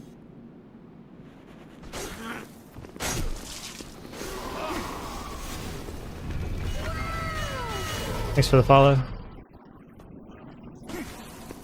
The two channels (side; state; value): both; identical; correlation 1.00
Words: Thanks for the follow.